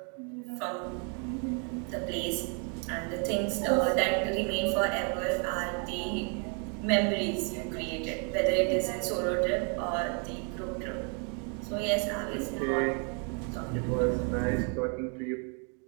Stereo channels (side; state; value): left; quieter; 39.0 dB